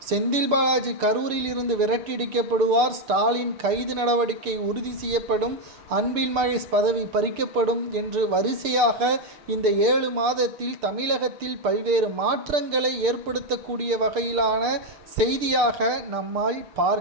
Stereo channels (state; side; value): late; left; 6.7 ms